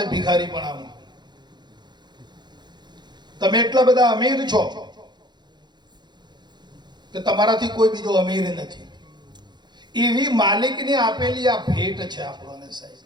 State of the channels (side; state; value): left; late; 0.21 ms